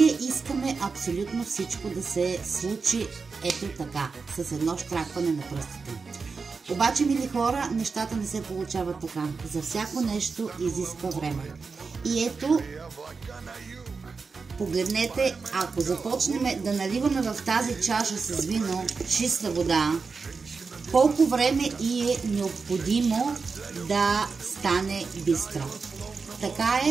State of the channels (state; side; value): quieter; left; 4.8 dB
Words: искаме абсолютно всичко да се случи ето така, с едно щракване на пръстите. Обаче, мили хора, нещата не се получават така. За всяко нещо изисква време. И ето, погледнете, ако започнем да наливаме в тази чаша с вино чиста вода, колко време и е необходимо да стане бистро. Така